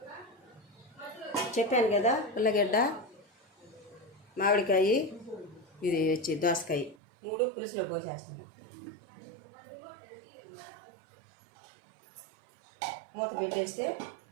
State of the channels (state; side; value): drops out; left; at 7.0 s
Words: చెప్పాను కదా, ఉల్లగడ్డ, మామిడికాయ, ఇది వచ్చి దోసకాయ 3 పులుసులో పోసేస్తున్నాను. మూత పెట్టేస్తే